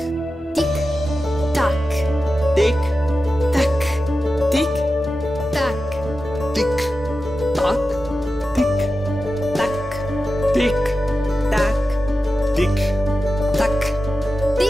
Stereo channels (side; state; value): both; normal; correlation 0.92